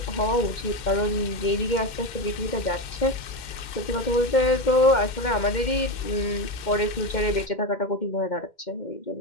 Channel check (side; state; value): right; late; 2.1 ms